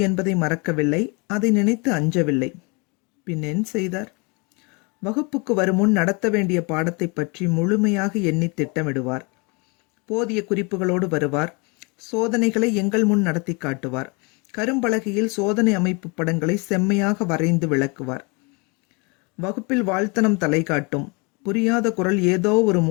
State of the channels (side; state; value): right; quieter; 30.2 dB